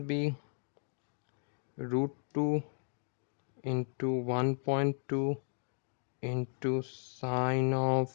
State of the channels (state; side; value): silent; right; 54 dB below the other